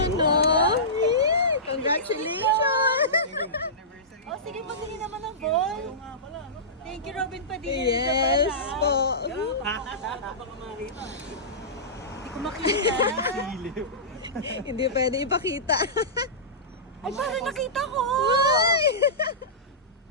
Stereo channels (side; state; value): both; normal; correlation -0.20